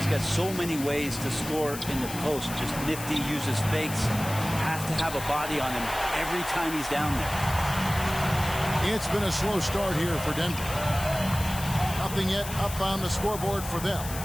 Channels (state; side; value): noise; left; hiss, 10 dB below the sound